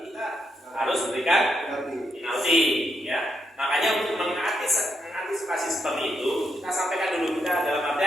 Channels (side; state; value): both; normal; correlation 0.81